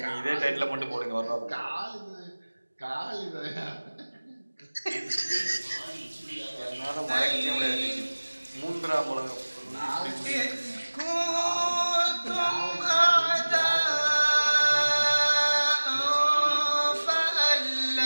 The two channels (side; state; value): both; inverted; correlation -1.00